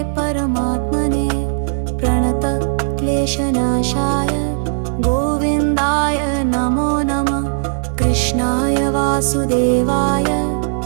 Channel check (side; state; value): left; silent; digital silence